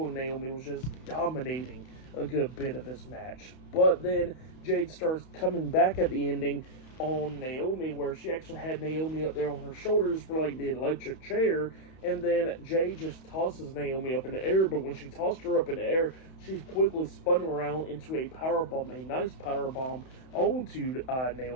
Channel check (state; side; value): late; right; 31 ms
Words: and Naomi was just dominating a good bit of this match. But then Jade starts coming back at the ending on Naomi, where she actually had Naomi up there on her shoulders for like the electric chair. And then Jade just tosses Naomi up in the air, but when she tossed her up in the air, she quickly spun around into a powerbomb, a nice powerbomb onto